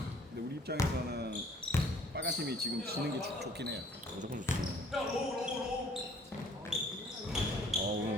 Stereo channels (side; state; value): both; normal; correlation 0.56